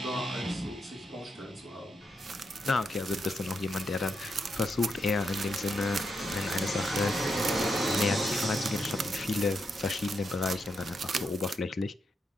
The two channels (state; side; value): normal; both; correlation 0.82